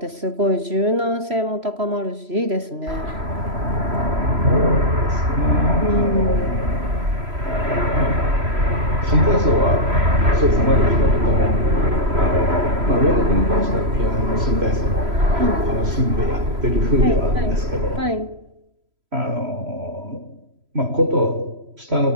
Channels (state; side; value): late; left; 3.0 ms